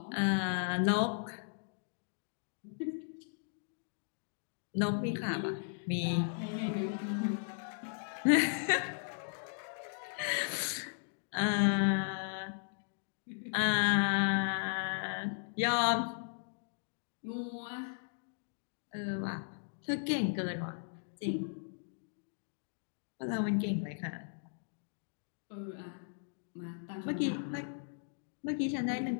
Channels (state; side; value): silent; right; digital silence